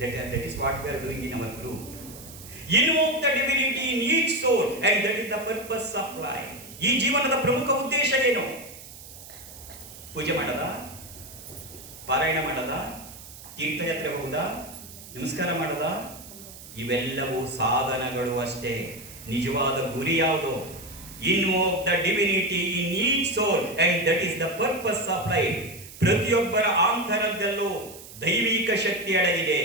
that is what we are doing in our group. Invoke the divinity in each soul and that is the purpose of life. ಈ ಜೀವನದ ಪ್ರಮುಖ ಉದ್ದೇಶ ಏನು? ಪೂಜೆ ಮಾಡದ, ಪಾರಾಯಣ ಮಾಡದ, ತೀರ್ಥಯಾತ್ರೆ ಹೋಗುದಾ, ನಮಸ್ಕಾರ ಮಾಡದ, ಇವೆಲ್ಲವೂ ಸಾಧನಗಳು ಅಷ್ಟೇ. ನಿಜವಾದ ಗುರಿ ಯಾವುದು? Invoke the divinity in each soul and that is the purpose of life. ಪ್ರತಿಯೊಬ್ಬರ ಆಂತರದಲ್ಲೂ ದೈವಿಕ ಶಕ್ತಿ ಅಡಗಿದೆ.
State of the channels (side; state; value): right; noise; hiss, 16 dB below the sound